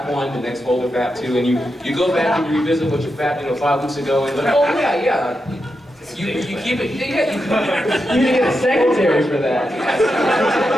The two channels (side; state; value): both; normal; correlation 0.87